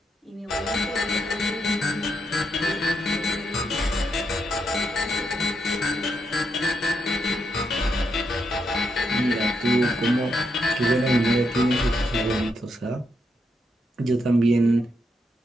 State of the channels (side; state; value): both; normal; correlation 0.80